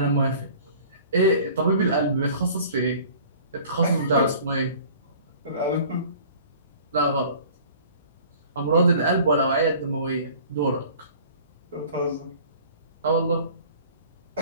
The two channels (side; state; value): both; inverted; correlation -0.47